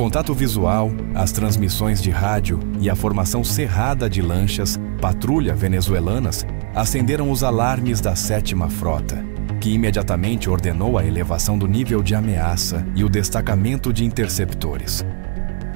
visual, as transmissões de rádio e a formação cerrada de lanchas patrulha venezuelanas acenderam os alarmes da 7ª Frota, que imediatamente ordenou a elevação do nível de ameaça e o destacamento de interceptores.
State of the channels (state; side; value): quieter; left; 38.7 dB